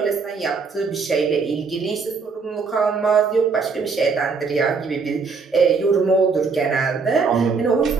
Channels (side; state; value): left; quieter; 4.9 dB